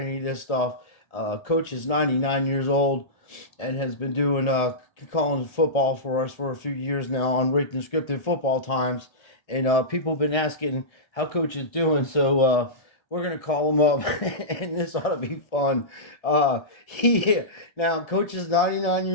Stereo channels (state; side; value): late; right; 1.7 ms